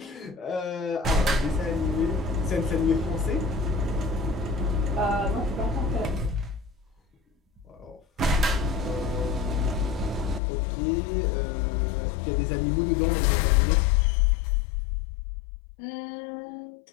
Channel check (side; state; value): right; drops out; at 10.4 s